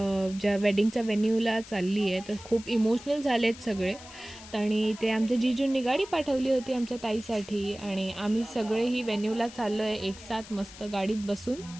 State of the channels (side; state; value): left; noise; hiss, 17 dB below the sound